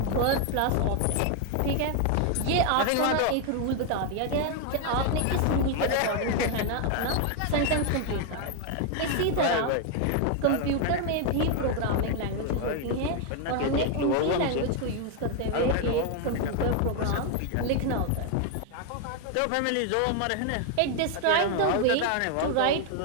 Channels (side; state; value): both; different; correlation 0.00